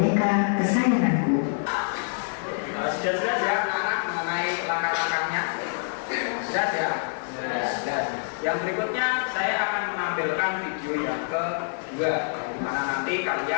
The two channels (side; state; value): right; silent; digital silence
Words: kesayanganku. Sudah ya anak mengenai langkah-langkahnya? Sudah ya? Sudah. Yang berikutnya saya akan menampilkan video yang kedua, di mana nanti